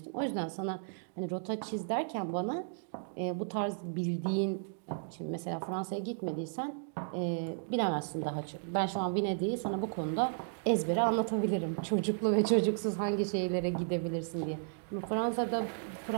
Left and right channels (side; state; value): left; silent; digital silence